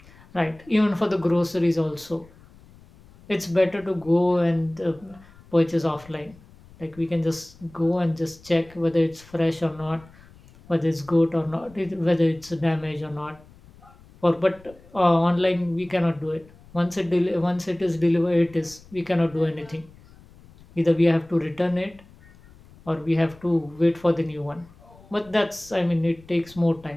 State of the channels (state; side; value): noise; left; rumble, 24 dB below the sound